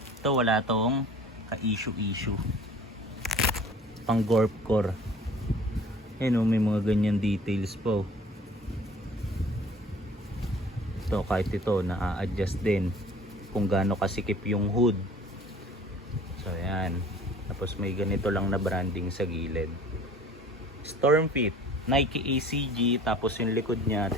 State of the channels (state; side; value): normal; both; correlation 0.48